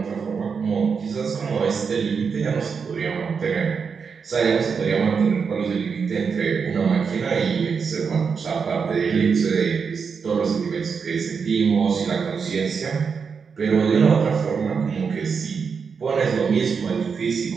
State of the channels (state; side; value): quieter; left; 5.8 dB